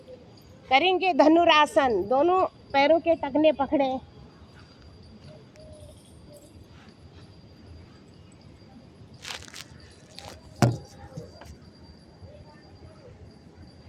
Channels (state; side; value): identical; both; correlation 1.00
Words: करेंगे धनुरासन, दोनों पैरों के टखने पकड़े।